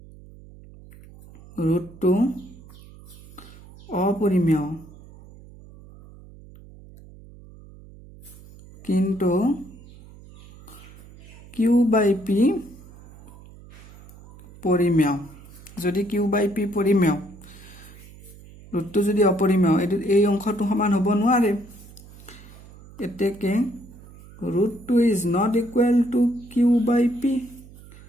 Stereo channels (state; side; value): noise; right; hum, 20 dB below the sound